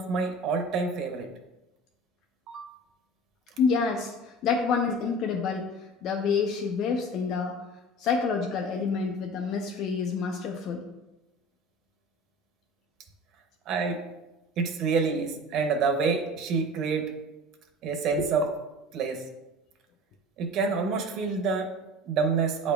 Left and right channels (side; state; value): both; normal; correlation 0.38